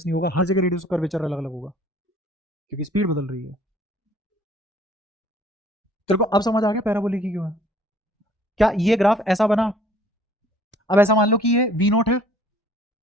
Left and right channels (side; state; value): both; normal; correlation 0.56